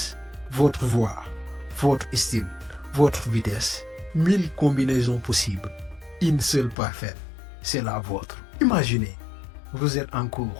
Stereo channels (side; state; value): right; drops out; at 6.8 s